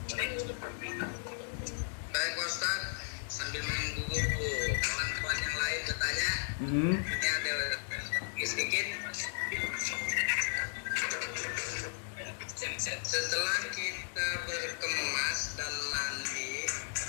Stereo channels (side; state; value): right; silent; digital silence